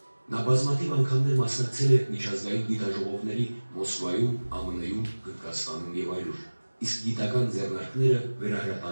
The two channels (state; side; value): inverted; both; correlation -1.00